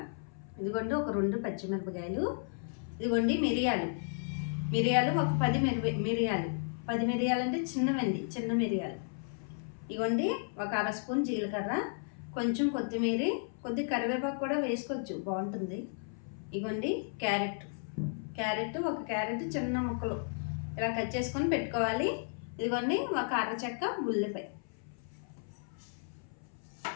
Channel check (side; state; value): right; silent; 55 dB below the other